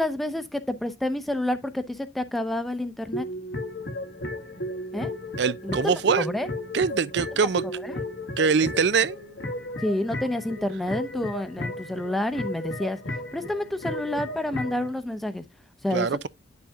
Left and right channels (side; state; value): both; normal; correlation 0.42